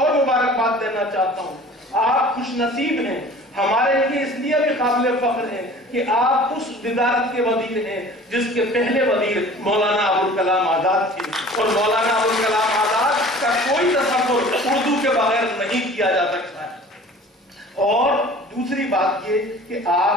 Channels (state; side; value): normal; both; correlation 0.45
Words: مبارکباد دینا چاہتا ہوں. آپ خوش نصیب ہیں، ہمارے لیے اس لیے بھی قابل فخر ہے کہ آپ اس وزارت کے وزیر ہیں جس کے پہلے وزیر مولانا ابوالکلام آزاد تھے، اور مولانا ابوالکلام آزاد کا کوئی تصور اردو کے بغیر نہیں کیا جا سکتا ہے. اور دوسری بات یہ کہ